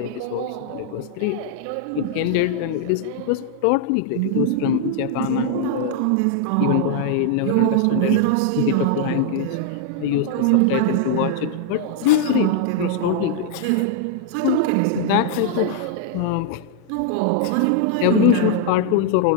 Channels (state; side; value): different; both; correlation 0.00